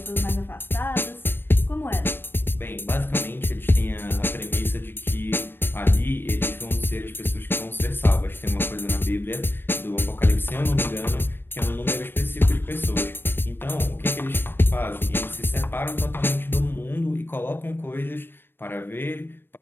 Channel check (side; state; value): right; late; 0.099 ms